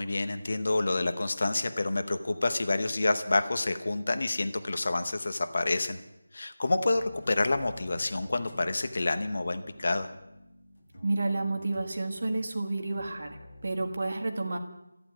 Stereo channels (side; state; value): both; inverted; correlation -0.96